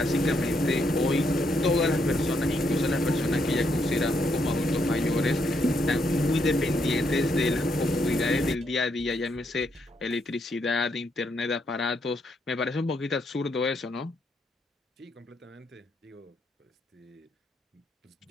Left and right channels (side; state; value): both; normal; correlation 0.76